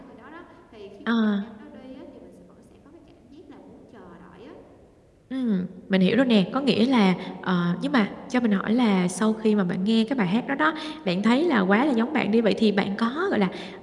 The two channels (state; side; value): identical; both; correlation 1.00